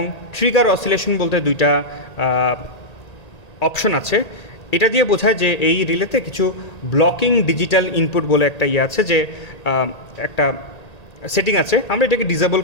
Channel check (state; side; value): late; right; 1.9 ms